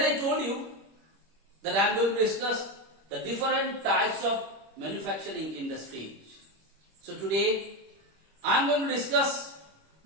I told you that I am going to discuss the different types of manufacturing industries. So today, I am going to discuss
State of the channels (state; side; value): late; left; 26 ms